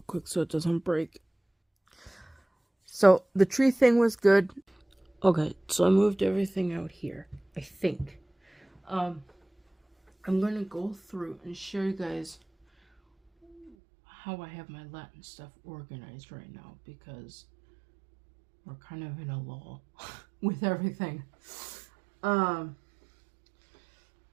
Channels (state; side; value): drops out; left; at 13.7 s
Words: quick so it doesn't break. So the tree thing was good. Okay, so I moved everything out here, I think. I'm gonna go through and show you guys how I have my Latin stuff organized right now, because we're kind of in a lull with everything.